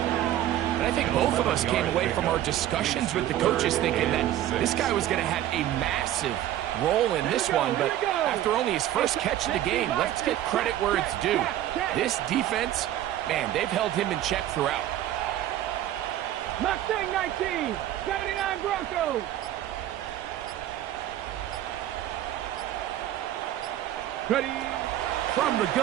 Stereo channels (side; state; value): left; quieter; 12.7 dB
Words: And I think both of us came away from our discussions with the coaches thinking that this guy was going to have a massive role in this one, but after only his first catch of the game, let's get credit where it's due. This defense, man, they've held him in check throughout. Mustang 19, 79 Broncos. Ready. From the